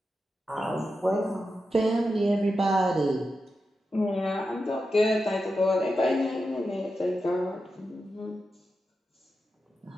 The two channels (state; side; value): normal; both; correlation 0.89